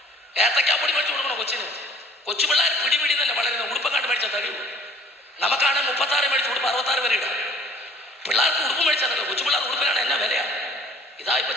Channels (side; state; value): both; normal; correlation 0.53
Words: ഏത്തക്കാപ്പൊടി മേടിച്ച് കൊടുക്കണോ കൊച്ചിന്? കൊച്ചു പിള്ളേർ പിടി തന്നെ വളരുന്ന ഉടുപ്പക്കാണ്ട് മേടിച്ചാൽ തടിയുള്ളൂ. നമുക്കാണ് 36 മേടിച്ച് ഉടുപ്പ് 66 വരെ ഇടാം. പിള്ളേർക്ക് ഉടുപ്പ് മേടിച്ചാൽ തടിയോ? കൊച്ചു പിള്ളേർ ഉടുപ്പിനാണ് എന്നാ വിലയാണ്. ഇതാ ഇപ്പൊ